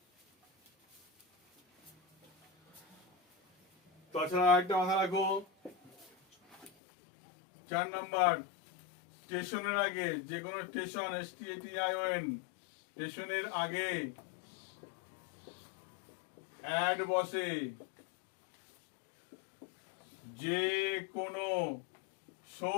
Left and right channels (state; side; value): drops out; right; at 6.7 s